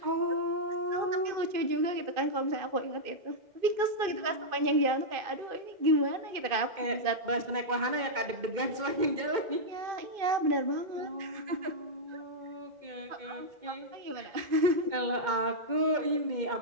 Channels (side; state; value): left; late; 2.1 ms